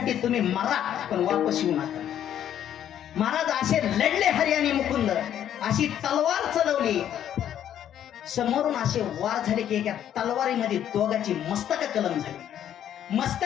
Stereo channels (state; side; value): quieter; right; 10.4 dB